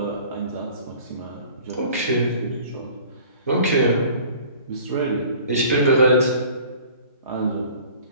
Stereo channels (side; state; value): both; inverted; correlation -0.48